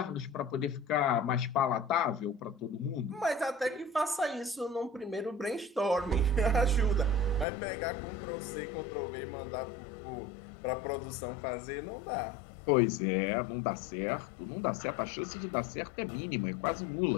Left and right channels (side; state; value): right; drops out; at 7.5 s